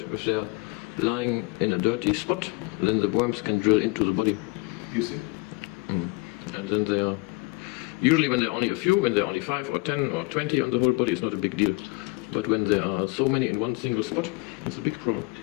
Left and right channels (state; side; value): quieter; right; 25.5 dB